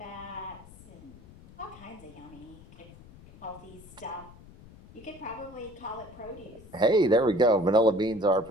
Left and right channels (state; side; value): noise; left; rumble, 20 dB below the sound